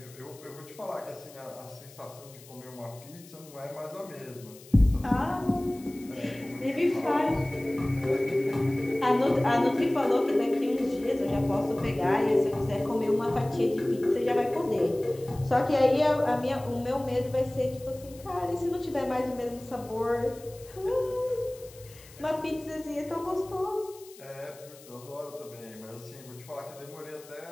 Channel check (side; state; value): left; noise; hiss, 21 dB below the sound